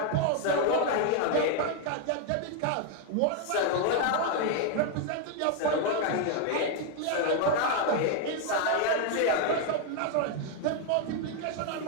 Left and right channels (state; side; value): different; both; correlation 0.00